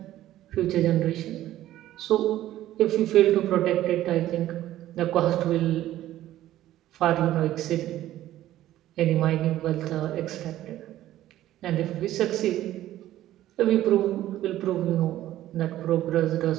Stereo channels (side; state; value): left; quieter; 13.8 dB